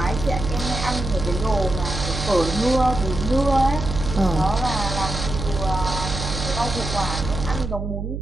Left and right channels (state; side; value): noise; right; hum, 5 dB below the sound